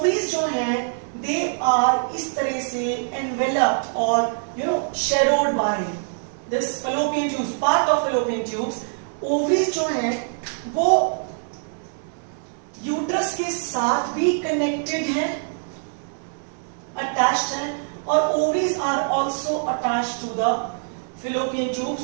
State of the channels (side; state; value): left; silent; digital silence